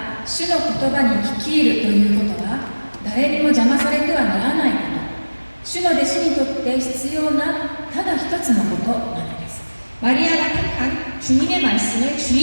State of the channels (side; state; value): both; inverted; correlation -1.00